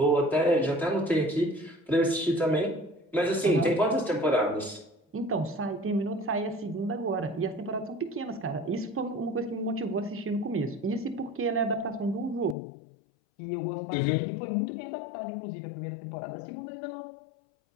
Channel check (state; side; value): drops out; right; at 12.6 s